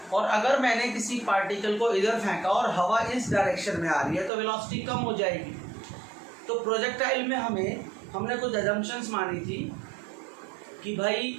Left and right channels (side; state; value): left; drops out; at 4.3 s